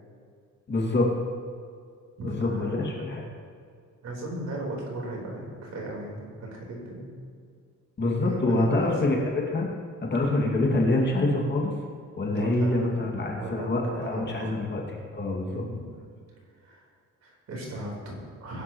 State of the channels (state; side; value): normal; both; correlation 0.61